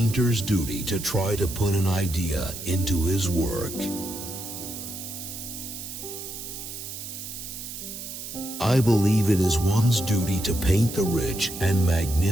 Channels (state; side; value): noise; right; hiss, 9 dB below the sound